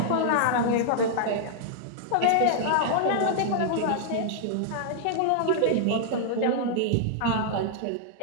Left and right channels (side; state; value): both; different; correlation -0.01